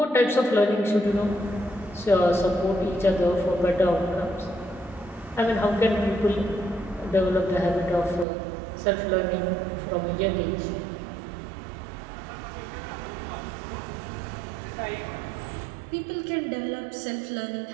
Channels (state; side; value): drops out; left; at 8.2 s